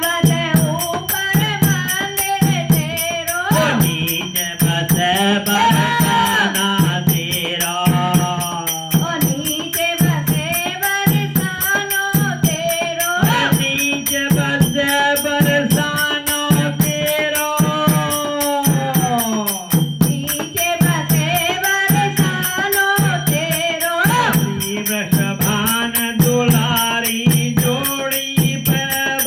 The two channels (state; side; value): identical; both; correlation 1.00